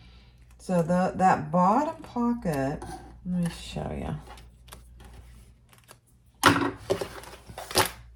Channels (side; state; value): both; identical; correlation 1.00